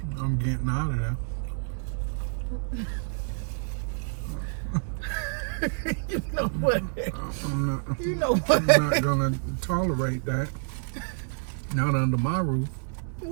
getting out of there. You know what? I'm not, You know what? I'm not going to tolerate that. Not under my roof.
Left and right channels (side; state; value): left; silent; digital silence